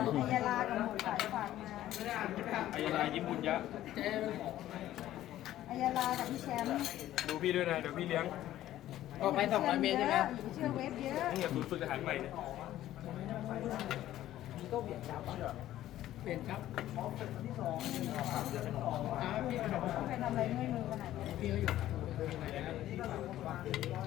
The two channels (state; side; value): quieter; right; 13.6 dB